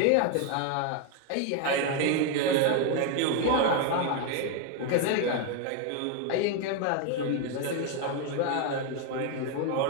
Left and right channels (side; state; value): both; different; correlation 0.01